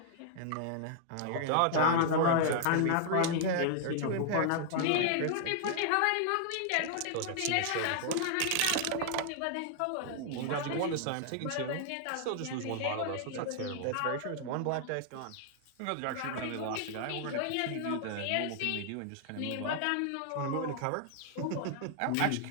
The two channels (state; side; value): different; both; correlation -0.01